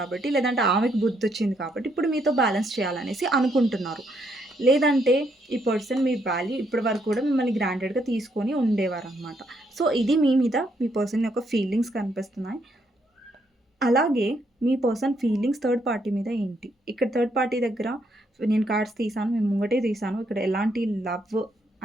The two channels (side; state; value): both; normal; correlation 0.74